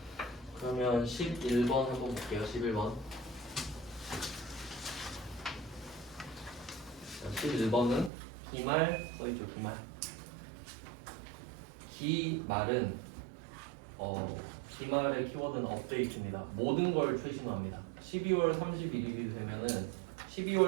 그러면 11번 한번 볼게요. 11번. 11번은 기말 써있죠. 기말. 기말은 기말의 키워드는 업데이트입니다. 모든 걸 최신화합니다. 12월 31일이 되면은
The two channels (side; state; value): left; drops out; at 8.1 s